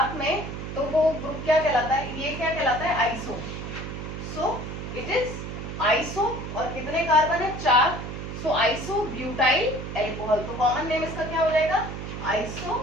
में, तो वो ग्रुप क्या कहलाता है, ये क्या कहलाता है, iso. So it is iso, और कितने कार्बन है, 4. सो आइसो ब्यूटाइल एल्कोहल, तो कॉमन नेम इसका क्या हो जाएगा, iso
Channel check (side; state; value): right; noise; hum, 7 dB below the sound